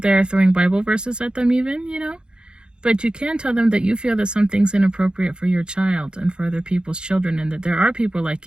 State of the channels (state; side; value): late; left; 0.050 ms